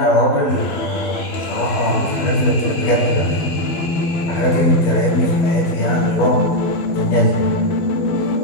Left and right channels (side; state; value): right; late; 12 ms